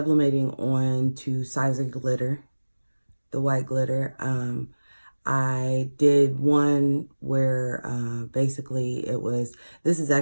on to Sizer glitter, the white glitter. I did one where basically this is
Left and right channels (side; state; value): both; inverted; correlation -1.00